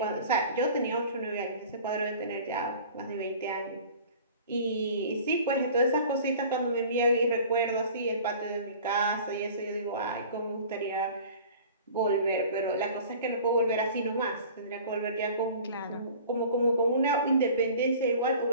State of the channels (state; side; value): inverted; both; correlation -0.44